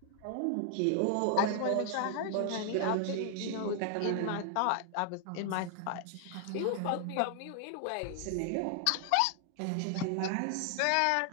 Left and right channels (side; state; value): both; different; correlation 0.00